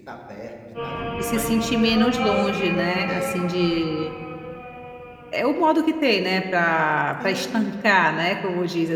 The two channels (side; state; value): both; identical; correlation 1.00